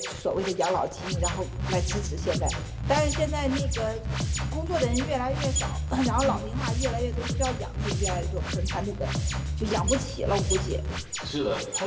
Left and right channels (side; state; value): both; identical; correlation 1.00